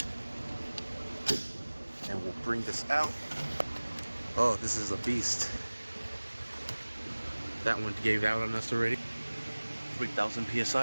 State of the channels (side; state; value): both; inverted; correlation -1.00